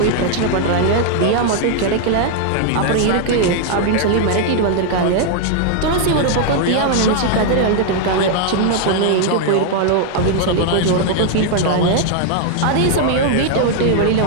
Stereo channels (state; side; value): different; both; correlation 0.00